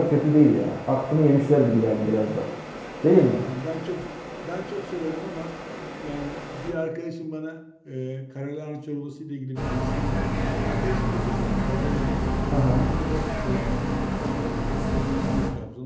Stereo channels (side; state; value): both; identical; correlation 1.00